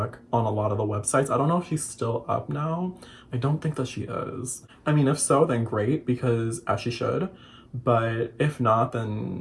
on a lot of the websites. I don't know if she's still up now. I don't think that she is. I mean, if so, then great, because as she should. But if not,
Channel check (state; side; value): identical; both; correlation 1.00